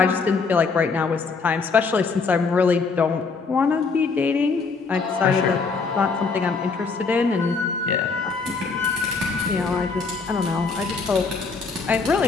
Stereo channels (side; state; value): right; quieter; 4.7 dB